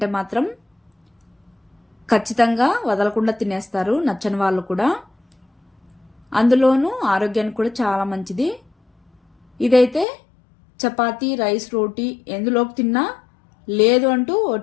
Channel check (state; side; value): drops out; right; at 10.1 s